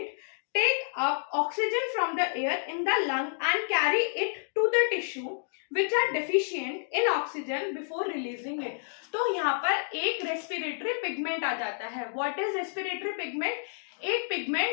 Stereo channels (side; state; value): right; silent; digital silence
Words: take up oxygen from the air in the lung and carry it to the tissue which are deficient in oxygen before releasing it. तो यहाँ पर एक respiratory pigment आ जाता है। What is respiratory pigment? एक